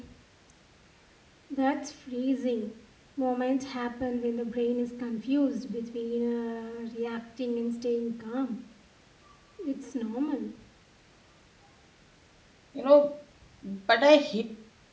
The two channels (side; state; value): both; identical; correlation 1.00